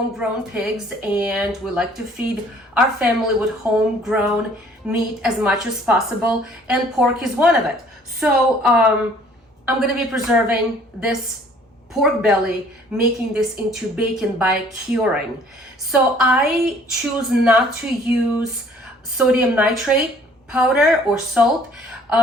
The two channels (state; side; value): normal; both; correlation 0.57